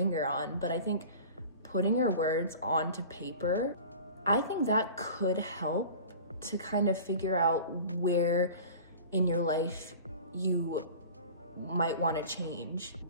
on. But I think putting your words onto paper, I think that could help to kind of figure out where in your life you might want to change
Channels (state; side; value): inverted; both; correlation -0.40